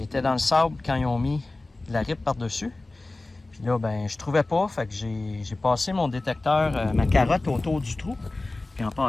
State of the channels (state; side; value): quieter; right; 3.0 dB